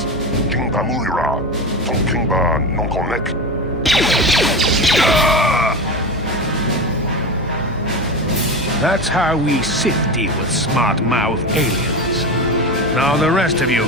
That's how we Sith deal with smart-mouth aliens. Now the rest of you,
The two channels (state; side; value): normal; both; correlation 0.23